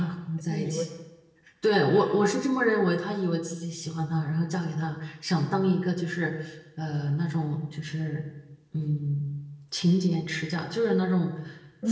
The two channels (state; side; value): identical; both; correlation 1.00